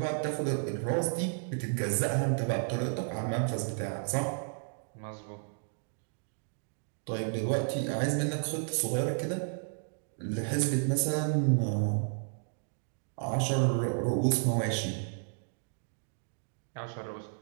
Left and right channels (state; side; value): silent; left; digital silence